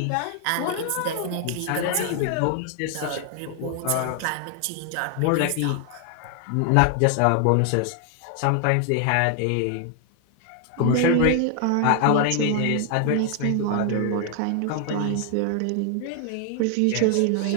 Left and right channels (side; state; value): both; different; correlation 0.00